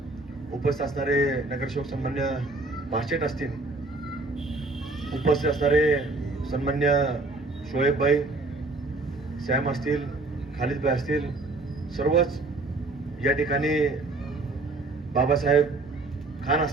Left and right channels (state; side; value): quieter; left; 3.2 dB